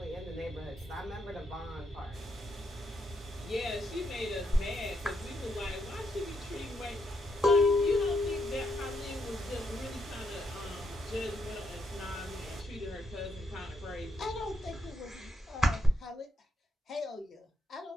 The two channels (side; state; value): both; normal; correlation 0.78